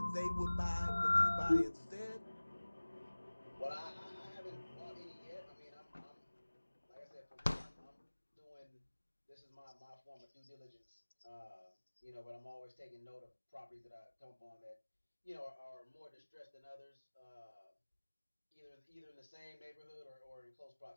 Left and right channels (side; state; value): both; inverted; correlation -1.00